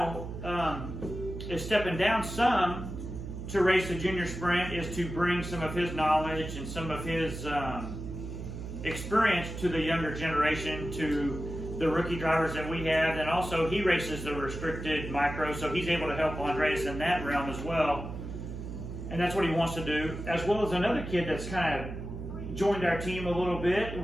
is stepping down some to race the junior sprint, is to bring some of his knowledge and some of his experience to the younger generation, to the rookie drivers that we have. And also he races the restricted micro, so he's able to help Andreas in that realm as well, and that's what he wants to do, as well as another kid that's kind of joined our team a little bit.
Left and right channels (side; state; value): right; noise; hum, 8 dB below the sound